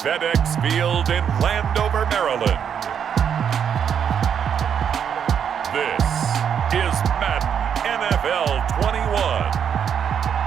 Field in Landover, Maryland, this is Madden NFL 21.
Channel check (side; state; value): left; quieter; 8.0 dB